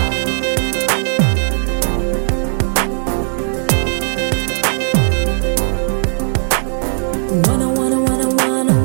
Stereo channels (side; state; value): left; silent; digital silence